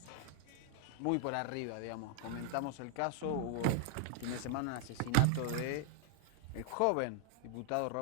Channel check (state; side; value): different; both; correlation 0.00